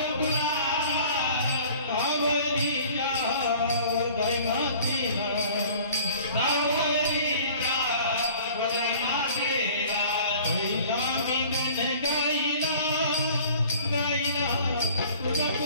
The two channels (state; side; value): inverted; both; correlation -0.49